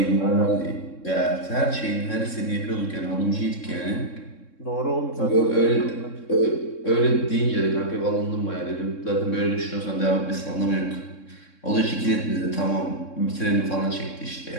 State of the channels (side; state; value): right; late; 3.7 ms